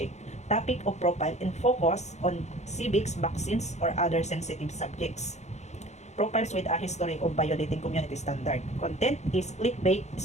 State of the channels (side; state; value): right; late; 0.33 ms